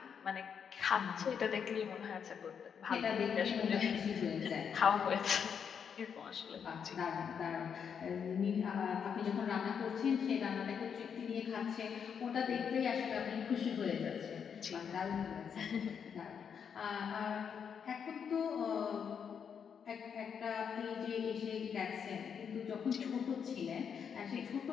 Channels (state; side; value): quieter; right; 7.2 dB